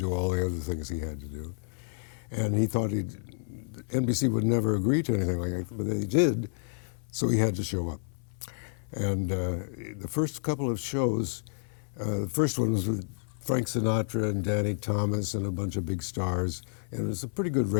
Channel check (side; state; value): right; silent; 58 dB below the other